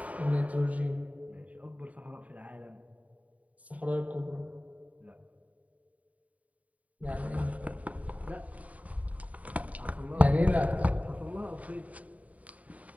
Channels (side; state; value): left; late; 0.070 ms